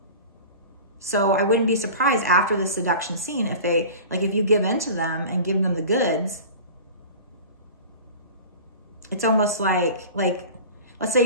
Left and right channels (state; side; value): inverted; both; correlation -0.37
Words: So I wouldn't be surprised after the seduction scene if they, like, if you give in to them and give them the goods, it's almost like, let's say